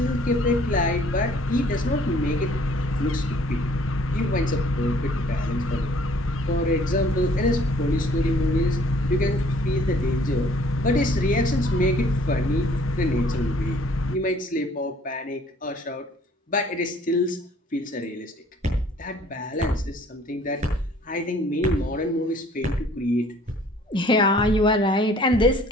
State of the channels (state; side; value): normal; both; correlation 0.57